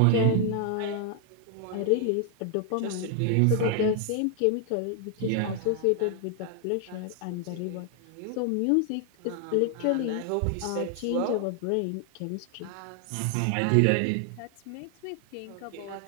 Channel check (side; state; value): both; different; correlation 0.00